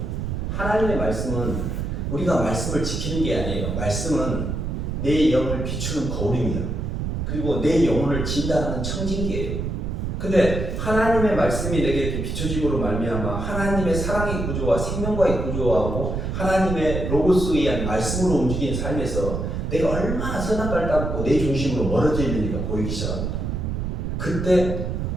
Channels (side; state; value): right; noise; rumble, 2 dB below the sound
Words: 하나님의 말씀은 우리가 말씀을 지키는 게 아니에요. 말씀은 내 영을 비추는 거울입니다. 그리고 내 영혼을 진단하는 청진기예요. 근데 하나님의 말씀이 내게 이렇게 비춰짐으로 말미암아 하나님의 사랑의 구조와 생명과의 구조하고 하나님의 로고스에 의한 말씀으로 움직이는 삶에서 내가 얼마나 선악과를 따먹고 내 중심으로 멀어져 있는지가 보이기 시작합니다. 그때